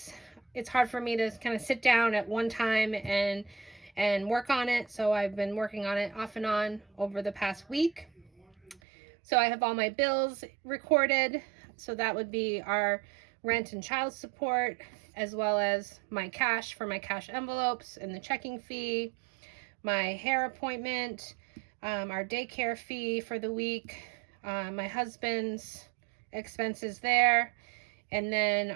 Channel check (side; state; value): left; drops out; at 8.8 s